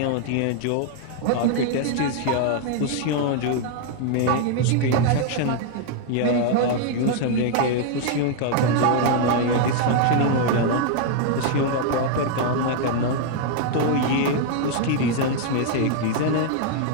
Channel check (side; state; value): both; different; correlation 0.00